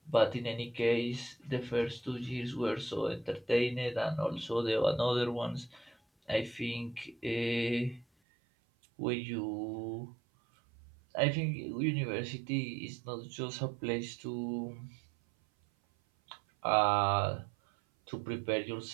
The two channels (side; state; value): left; drops out; at 8.1 s